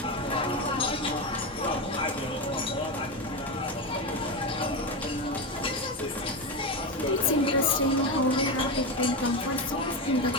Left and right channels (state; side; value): normal; both; correlation 0.15